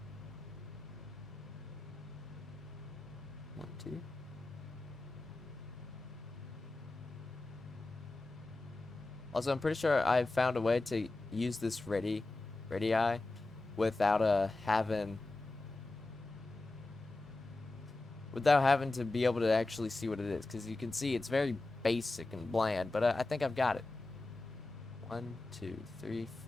1, 2. Also, I'm pretty sure I found a way to use this radii without having to be able to actually see what it is, because you can see it's very basic and bland, but I think I've got it. 1, 2, 3,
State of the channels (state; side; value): quieter; right; 3.0 dB